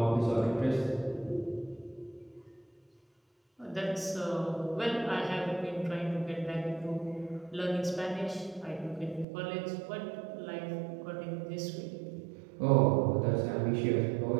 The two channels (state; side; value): drops out; left; at 9.2 s